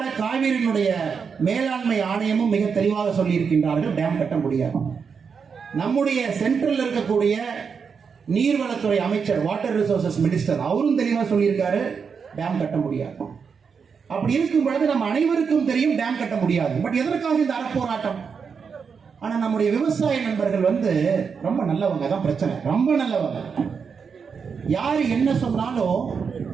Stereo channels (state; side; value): quieter; left; 6.0 dB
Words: காவிரியினுடைய மேலாண்மை ஆணையமும் மிக தெளிவாக சொல்லி இருக்கின்றார்கள், டேம் கட்ட முடியாது. நம்முடைய சென்ட்ரல் இருக்கக்கூடிய நீர்வளத்துறை அமைச்சர், வாட்டர் ரிசோர்சஸ் மினிஸ்டர், அவரும் தெளிவாக சொல்லியிருக்காரு, டேம் கட்ட முடியாது. அப்படி இருக்கும் பொழுது நம்ம அனைவருக்கும் தெரியும் டேம் கட்ட முடியாது. பட் எதற்காக இந்த அறப்போராட்டம்? ஆனா நம்முடைய விவசாய நண்பர்கள் ரொம்ப நல்லவங்க, தான் பிரச்சனை, ரொம்ப நல்லவங்க. யாரு என்ன சொன்னாலும்